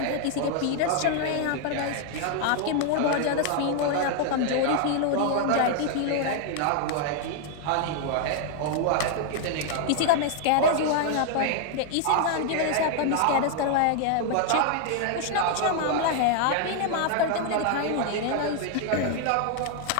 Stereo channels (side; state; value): both; different; correlation 0.00